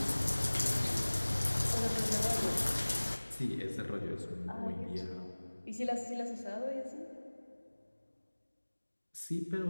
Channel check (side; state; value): both; inverted; correlation -1.00